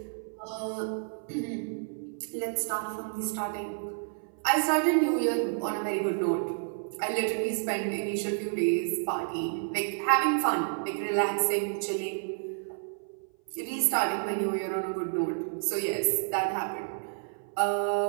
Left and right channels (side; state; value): left; silent; 56 dB below the other